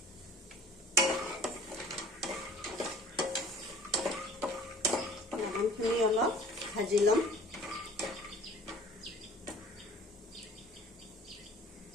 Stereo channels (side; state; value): both; normal; correlation 0.47